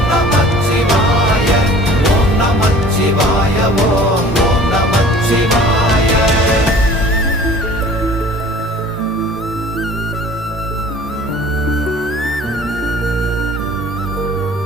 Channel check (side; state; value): both; normal; correlation 0.47